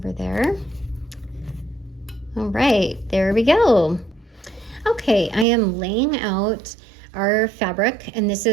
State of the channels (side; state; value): left; drops out; at 5.5 s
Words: there. All right, there we go. Okay, I am laying out our fabric, and this